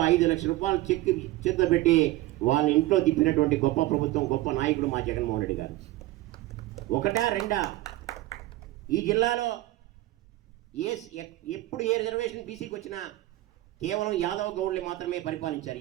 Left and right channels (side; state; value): left; quieter; 16.9 dB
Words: 5 లక్షల రూపాయలు చెక్ చేతిలో పెట్టి వాళ్ళ ఇంట్లో తిప్పినటువంటి గొప్ప ప్రభుత్వం, గొప్ప నాయకుడు మా జగన్మోహన్ రెడ్డి గారు. ఒకటా రెండా, ఈ జిల్లాలో ఎప్పుడు ఏ రిజర్వేషన్ బీసీకి వచ్చినా కేవలం యాదవ్ గౌడ్లు మాత్రమే పరిపాలించారు